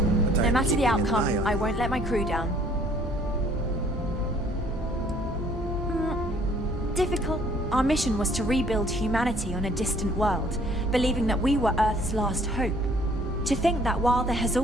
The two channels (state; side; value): normal; both; correlation 0.59